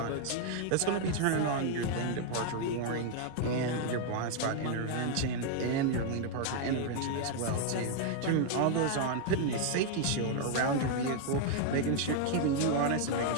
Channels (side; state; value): both; different; correlation 0.00